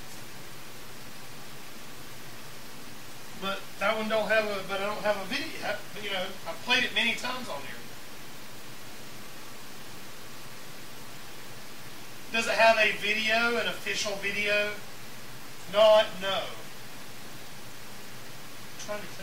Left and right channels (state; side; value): identical; both; correlation 1.00